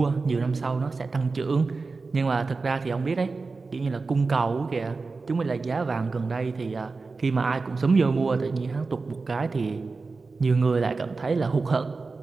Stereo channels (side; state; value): left; quieter; 4.1 dB